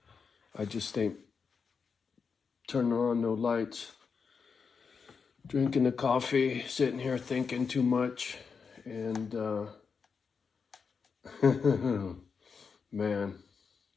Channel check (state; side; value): quieter; right; 5.7 dB